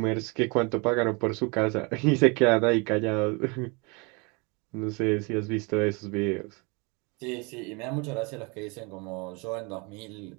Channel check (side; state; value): left; quieter; 30.0 dB